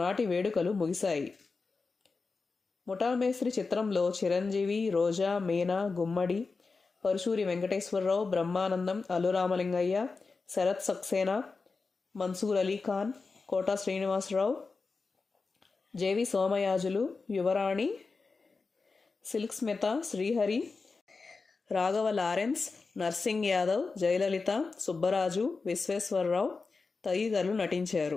వేడుకలు ముగిశాయి. ముఠా మేస్త్రి చిత్రంలో Chiranjeevi, Roja, Meena, Gummadi, Paruchuri Venkateswara Rao, Brahmanandam, Allu Ramalingaiah, Sarath Saxena, Mansoor Ali Khan, Kota Srinivasa Rao, J V Somayajulu, Yuvarani, Silk Smitha, Srihari, Raghava Lawrence, Narsing Yadav, Jayalalitha, Subbaraju, Visweswara Rao తదితరులు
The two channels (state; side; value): quieter; right; 4.3 dB